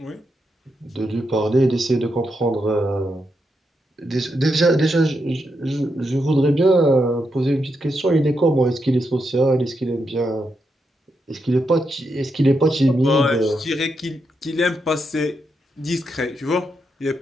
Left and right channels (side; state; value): both; normal; correlation 0.83